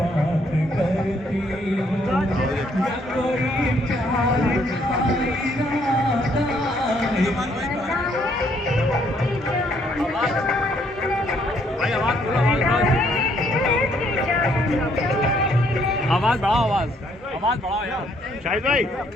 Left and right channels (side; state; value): both; normal; correlation 0.68